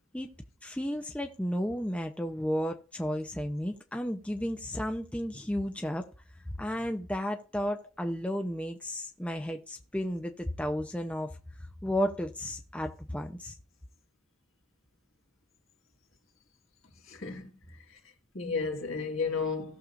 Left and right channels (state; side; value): normal; both; correlation 0.78